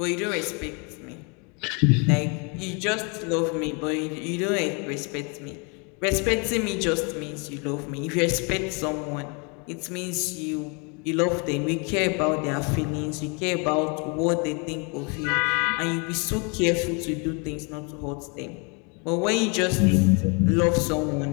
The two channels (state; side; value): quieter; right; 33.6 dB